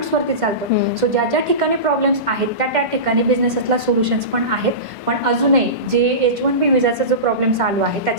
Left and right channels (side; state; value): left; late; 1.5 ms